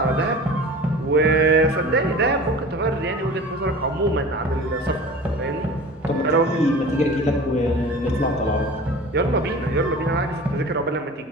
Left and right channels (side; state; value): both; normal; correlation 0.39